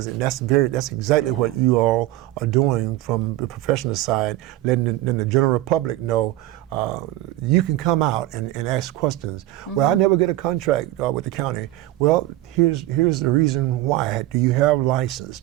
And that's exactly what you all are doing from the professional side, letting the general public know you can come out and ask questions. Well, I never get a contract with the county. Well, here's the reason why. Do you have license?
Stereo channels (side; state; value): left; quieter; 15.7 dB